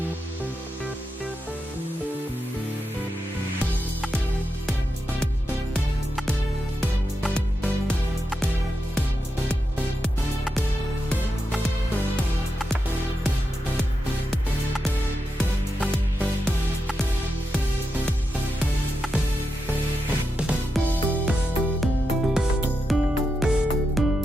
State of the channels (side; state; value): both; normal; correlation 0.87